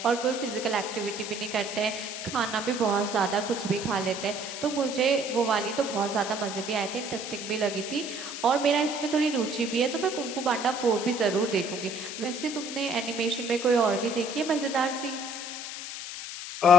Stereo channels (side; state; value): left; noise; hiss, 8 dB below the sound